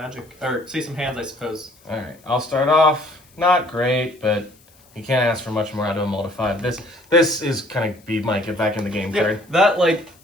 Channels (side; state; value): left; noise; hiss, 29 dB below the sound